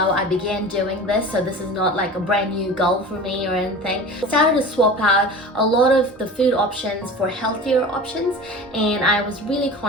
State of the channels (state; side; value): normal; both; correlation 0.36